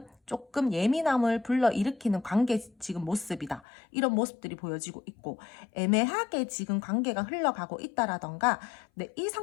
조금 예민함을 불러일으키는 관계 지금 모습이다. 이런 모습들이 보여지고 있고 애매하게 지금 관계가 흘러가고 있다라던가 이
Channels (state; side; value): drops out; right; at 3.6 s